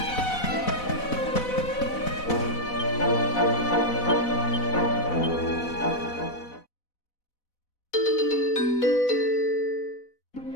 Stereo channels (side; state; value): right; late; 4.1 ms